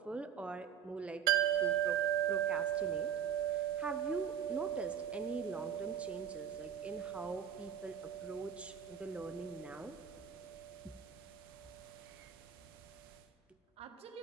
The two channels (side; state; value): left; quieter; 8.5 dB